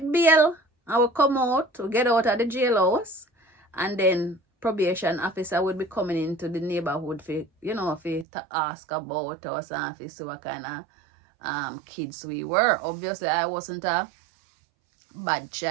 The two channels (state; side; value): drops out; left; at 8.2 s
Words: bail and we come out, we get out of the jailhouse, and then probation officer would be coming into the neighborhood for, you know, to ask about us and to see what kind of kids we were. Obviously, I wasn't a bad